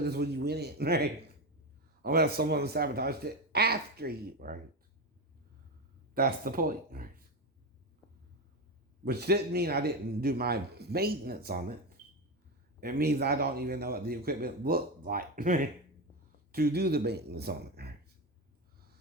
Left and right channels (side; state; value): both; normal; correlation 0.16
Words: as when you went in, right? Unless someone sabotaged it after you, right? That's the point, right? Which didn't mean I didn't do my maintenance on it. It means I don't even know what the equipment looked like to do the maintenance on it.